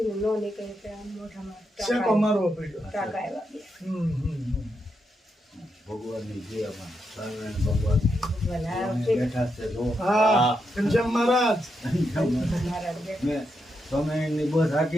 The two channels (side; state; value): both; normal; correlation 0.83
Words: નો નીકળે કે આમ મોઢામાં શેકો મારવો પડ્યો. ટાંકા આવ્યા બે. ભગવાનની દયામાં સ્વામિનારાયણ ભગવાન ભગવાન આ બેઠા છે. જો હા ઘનશ્યામ મહારાજ. મારા બેટા મેં સ્વામિનારાયણની બસ